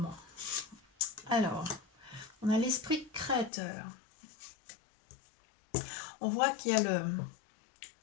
Alors, on a l'esprit créateur. On voit qu'il y a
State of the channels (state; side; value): drops out; right; at 3.5 s